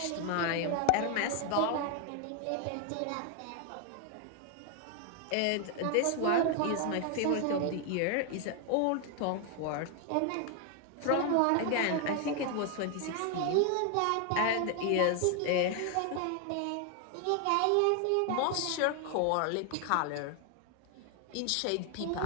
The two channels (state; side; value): different; both; correlation 0.00